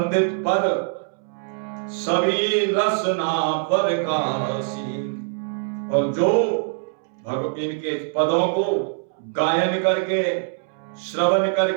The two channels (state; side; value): silent; left; 63 dB below the other